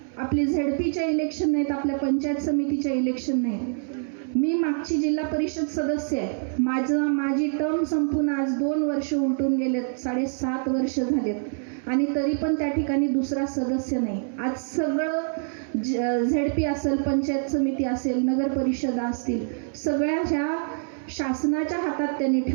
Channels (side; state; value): left; silent; 61 dB below the other